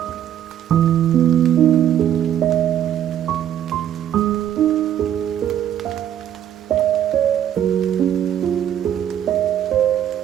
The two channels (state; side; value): quieter; left; 10.6 dB